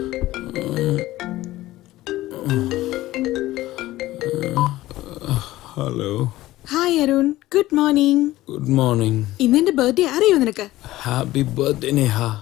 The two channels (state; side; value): quieter; right; 16.5 dB